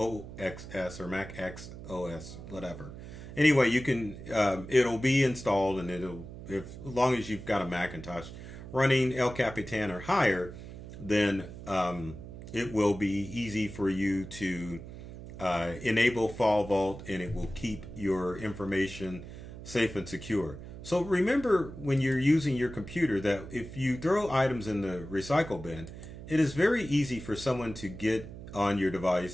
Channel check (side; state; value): right; noise; hum, 12 dB below the sound